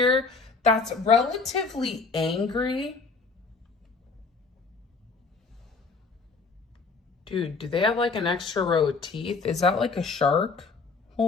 that's relatively angry. Dude, do they have like an extra row of teeth? Is that like a shark?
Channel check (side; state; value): right; quieter; 4.4 dB